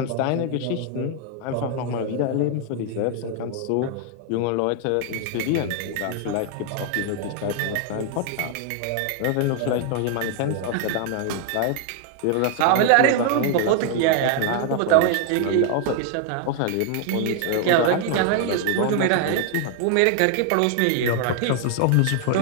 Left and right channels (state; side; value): different; both; correlation 0.00